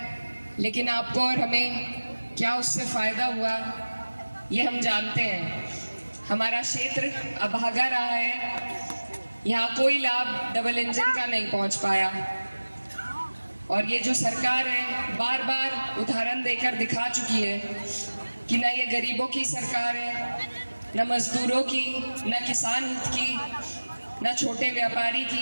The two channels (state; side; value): inverted; both; correlation -1.00